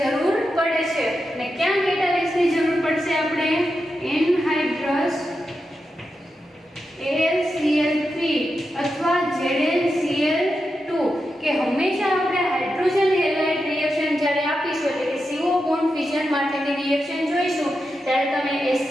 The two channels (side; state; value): both; normal; correlation 0.88